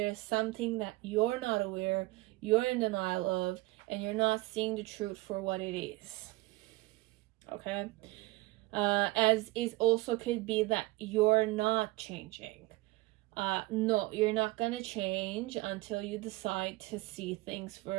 something that you're not aware, you're in denial of, and you're not seeing the truth for what it is. Okay? As it also could be that you're not changing. No, you're not gonna change until you decide to see things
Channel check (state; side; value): quieter; left; 21.2 dB